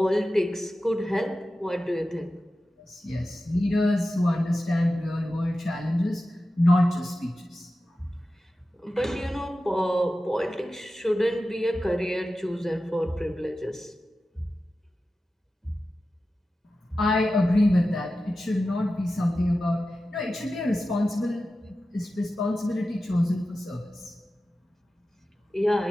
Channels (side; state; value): both; normal; correlation 0.93